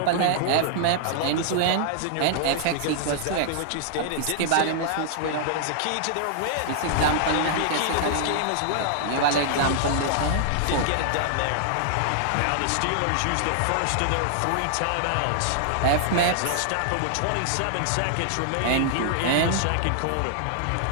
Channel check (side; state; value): both; different; correlation -0.01